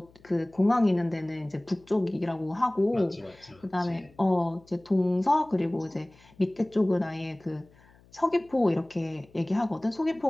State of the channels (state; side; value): noise; left; hum, 28 dB below the sound